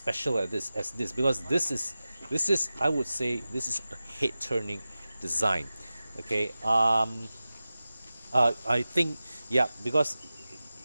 as this, because this is I would say this is a head turning design. Okay, I think, yeah, because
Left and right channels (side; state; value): both; inverted; correlation -0.95